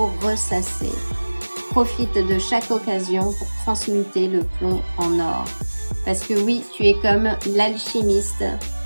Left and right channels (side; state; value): both; inverted; correlation -1.00